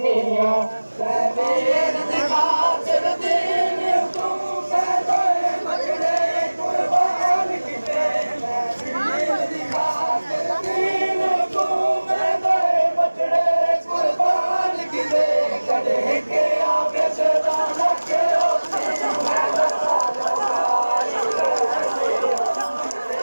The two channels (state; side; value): inverted; both; correlation -1.00